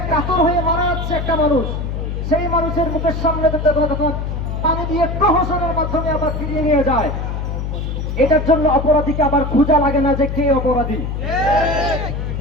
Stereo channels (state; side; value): noise; left; hum, 3 dB below the sound